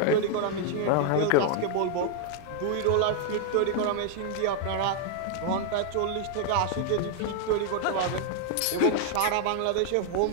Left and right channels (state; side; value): different; both; correlation 0.00